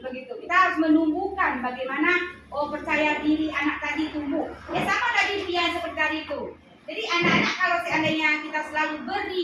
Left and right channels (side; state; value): both; identical; correlation 1.00